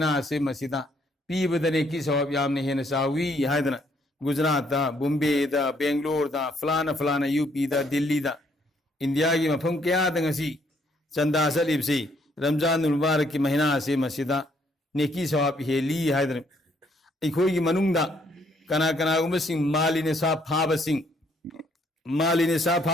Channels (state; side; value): normal; both; correlation 0.68